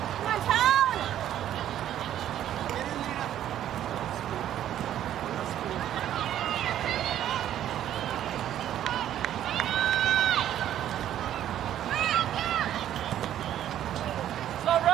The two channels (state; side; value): quieter; left; 11.4 dB